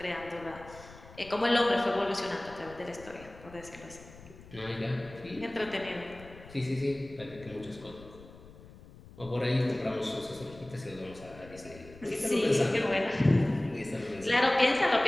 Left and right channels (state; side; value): noise; left; rumble, 19 dB below the sound